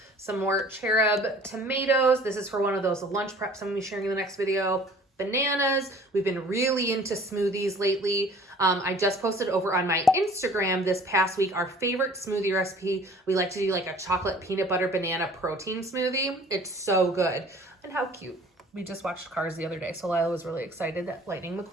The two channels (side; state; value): both; normal; correlation 0.50